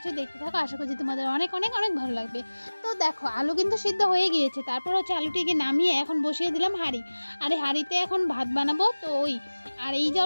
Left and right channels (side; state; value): both; inverted; correlation -1.00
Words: দেখতে থাকো। আশা করছি তোমাদের অনেক অনেক অনেক ভালো লাগবে। তো দেখো, আলু কিন্তু সিদ্ধ হয়ে গিয়েছে। তারপর হচ্ছে আলুটিকে নামিয়ে এখন বসিয়ে দিলাম হাঁড়ি। আর এই হাঁড়িতে এখন ভাত বানাবো। তো আর এই যে